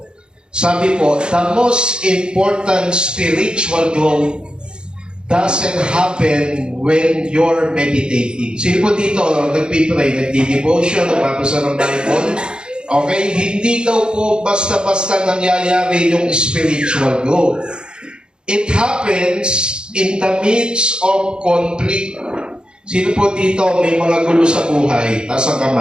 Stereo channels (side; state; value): left; late; 0.049 ms